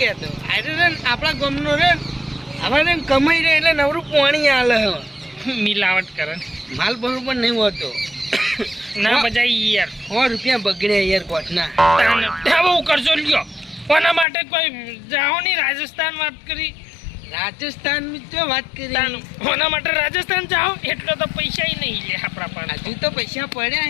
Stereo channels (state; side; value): drops out; right; at 14.2 s